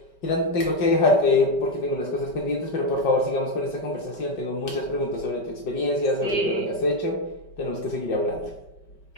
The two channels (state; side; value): late; right; 5.2 ms